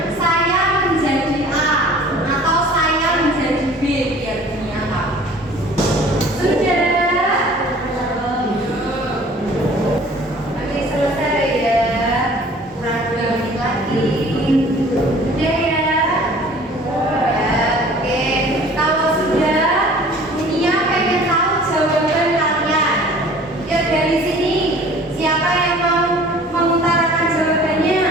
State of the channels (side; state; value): both; normal; correlation 0.49